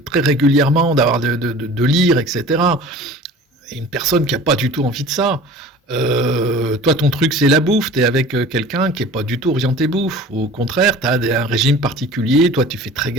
très régulièrement, de lire, etc. Et une personne qui n'a pas du tout envie de ça, toi ton truc c'est la bouffe, tu es avec quelqu'un qui n'est pas du tout orienté bouffe. Au contraire, tu as un régime particulier, toi tu fais très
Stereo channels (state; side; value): normal; both; correlation 0.42